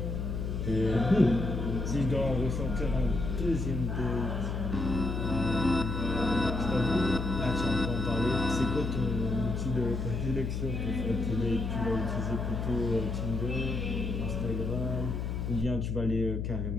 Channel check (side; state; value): left; noise; hum, 2 dB below the sound